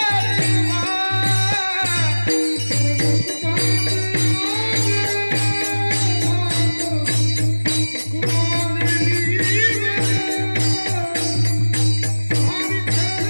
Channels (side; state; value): both; inverted; correlation -1.00